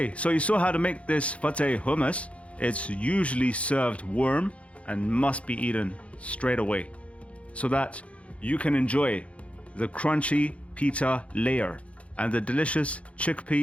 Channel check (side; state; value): right; late; 0.063 ms